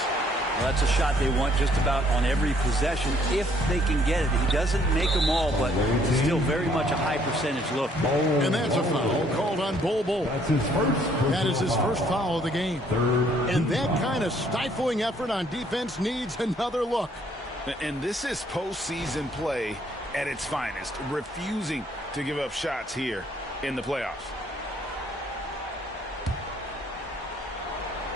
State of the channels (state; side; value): normal; both; correlation 0.64